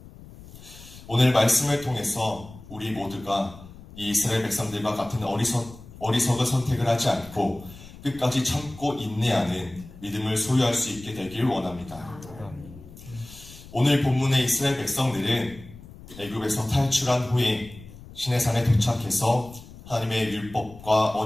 오늘 말씀을 통해서 우리 모두가 이 이스라엘 백성들과 같은 어리석은 선택을 하지 않고 끝까지 참고 인내하는 믿음을 소유할 수 있게 되길 원합니다. 오늘 본문의 이스라엘 백성들은 애굽에서 탈출한 후에 시내산에 도착해서 하나님의 율법과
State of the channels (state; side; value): noise; left; rumble, 18 dB below the sound